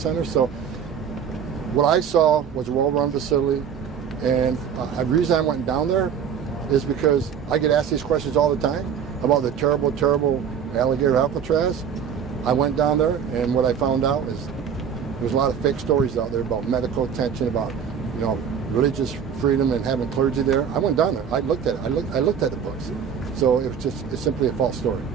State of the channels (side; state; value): left; quieter; 7.6 dB